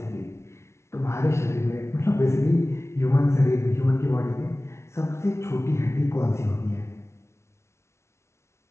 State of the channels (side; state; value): right; late; 0.13 ms